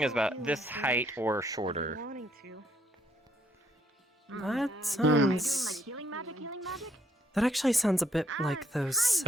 it was about this height or shorter. That sounds... That actually sounds a bit like those...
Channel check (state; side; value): normal; both; correlation 0.71